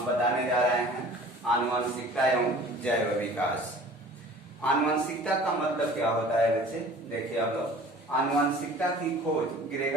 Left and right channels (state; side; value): normal; both; correlation 0.46